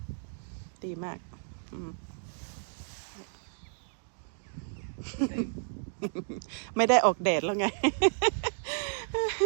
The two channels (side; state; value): left; silent; digital silence